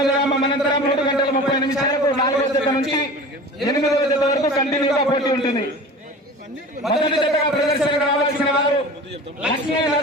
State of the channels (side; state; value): both; normal; correlation 0.37